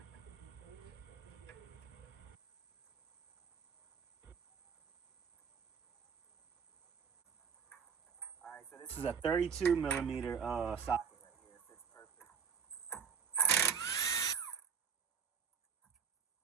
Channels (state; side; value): quieter; left; 6.4 dB